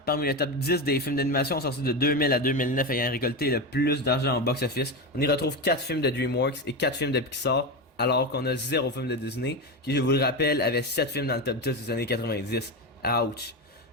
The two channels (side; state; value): both; normal; correlation 0.17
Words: parmi le top 10 des films d'animation sortis de 2000 à 2009 ayant récolté le plus d'argent au box-office, on y retrouve 4 films de DreamWorks et 4 films de Pixar, alors qu'on a 0 film de Disney, qui je vous le rappelle avait 7 films dans le top 10 des années 90. Ouch!